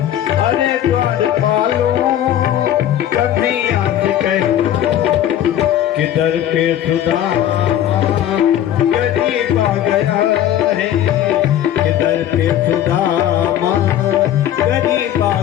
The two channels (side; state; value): right; quieter; 11.3 dB